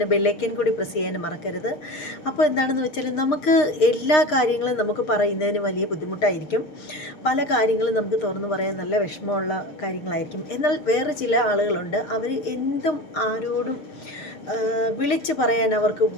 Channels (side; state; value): right; late; 6.5 ms